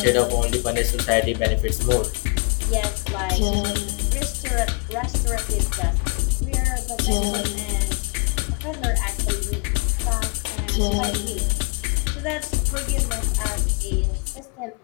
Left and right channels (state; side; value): quieter; right; 37.5 dB